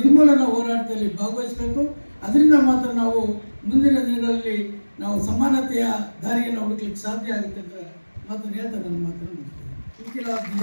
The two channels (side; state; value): both; inverted; correlation -1.00